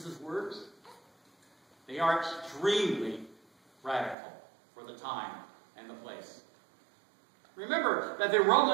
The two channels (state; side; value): drops out; left; at 4.2 s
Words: words? They are extremely radical for the time and the place. Remember that the